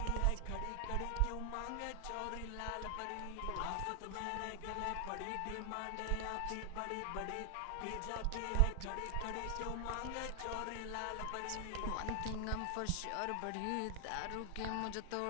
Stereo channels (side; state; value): both; different; correlation 0.00